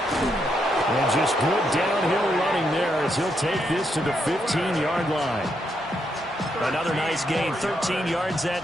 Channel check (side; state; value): both; normal; correlation 0.79